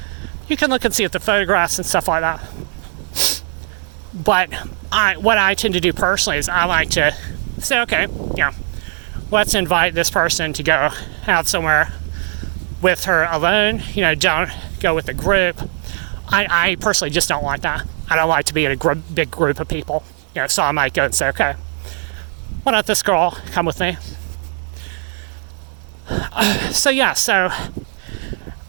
can look and see at the photographs and stuff like that. But what I tend to do personally is I like to say, okay, let's invite this person to go out somewhere with her alone. Don't go with a group. I personally just don't like that. I don't like to be in a big group of people. So I might go and say, okay, why don't this girl come with me? So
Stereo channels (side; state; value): left; silent; digital silence